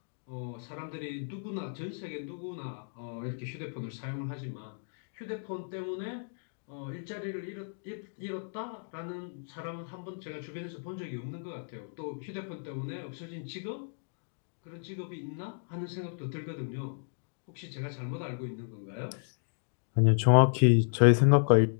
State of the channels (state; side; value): silent; right; digital silence